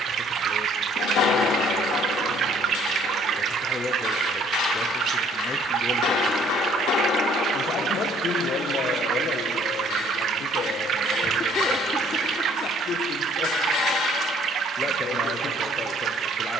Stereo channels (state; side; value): normal; both; correlation 0.60